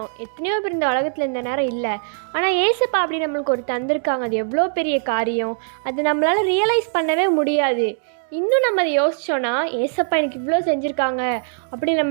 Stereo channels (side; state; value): left; silent; 65 dB below the other